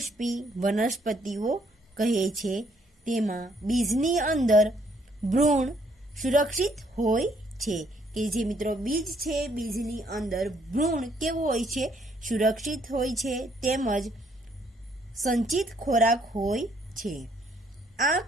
વનસ્પતિઓ કહે છે. તેમાં બીજની અંદર ભ્રૂણ સુરક્ષિત હોય છે. કે જે મિત્રો બીજ છે, બીજની અંદર ભ્રૂણ કેવું હોય છે? સુરક્ષિત હોય છે તેમજ સંચિત ખોરાક હોય છે. આ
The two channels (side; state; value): both; normal; correlation 0.67